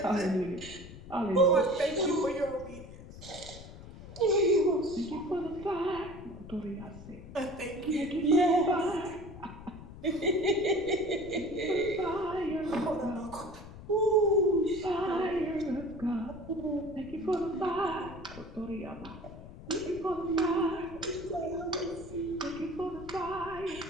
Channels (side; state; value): left; noise; rumble, 15 dB below the sound